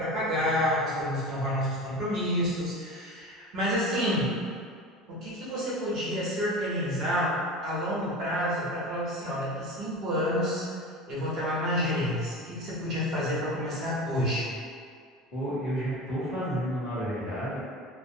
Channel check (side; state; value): both; normal; correlation 0.31